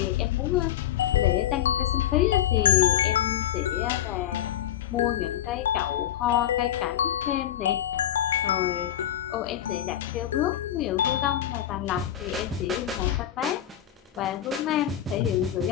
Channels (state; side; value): quieter; right; 11.4 dB